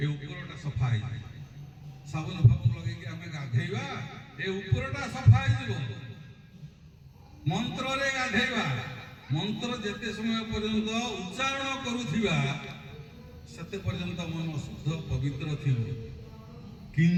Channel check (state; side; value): identical; both; correlation 1.00